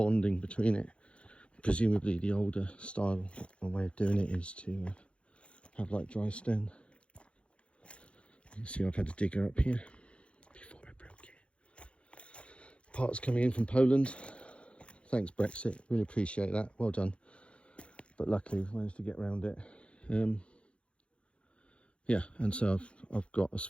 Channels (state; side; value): late; right; 0.060 ms